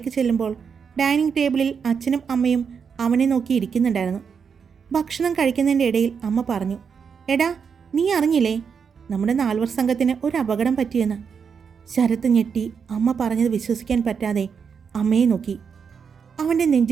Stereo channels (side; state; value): left; quieter; 6.4 dB